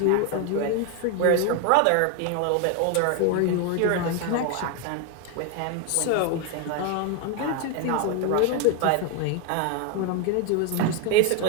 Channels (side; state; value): both; different; correlation 0.01